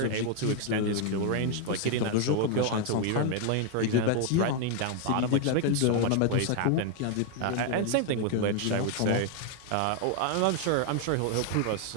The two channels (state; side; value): different; both; correlation 0.00